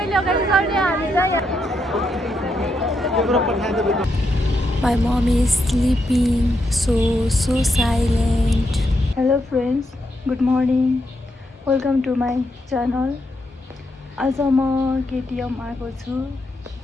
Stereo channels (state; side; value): normal; both; correlation 0.81